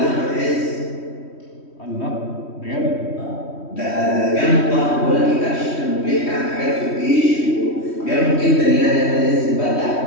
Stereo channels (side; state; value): right; late; 3.1 ms